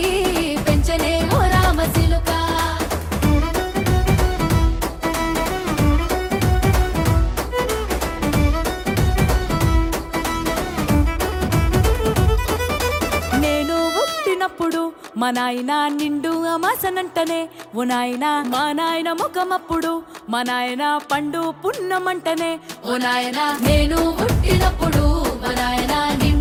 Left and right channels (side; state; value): both; identical; correlation 1.00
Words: పెంచనే ఓ రామసిలుక నేను పుట్టినప్పుడు మా నాయన నిండు అమాసనంటనే ఓ నాయన మా నాయన ముఖమప్పుడు మా నాయన పండు పున్నమంటనే ఓ నాయన నేను పుట్టినప్పుడు మా నాయన